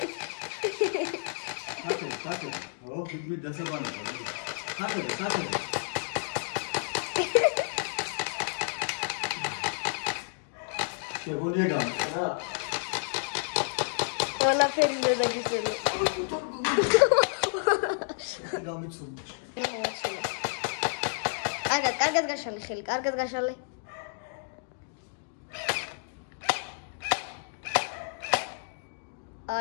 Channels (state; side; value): silent; right; digital silence